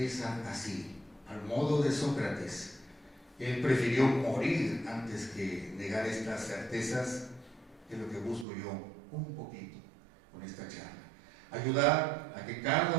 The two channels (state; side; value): drops out; left; at 8.5 s